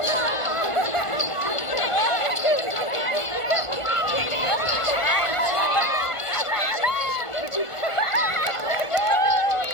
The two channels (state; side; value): late; right; 1.5 ms